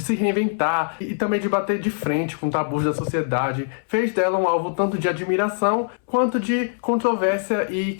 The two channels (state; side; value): silent; right; 64 dB below the other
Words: se reinventar e também de bater de frente com tabus da sociedade fez dela um alvo tanto de admiração quanto de controvérsia e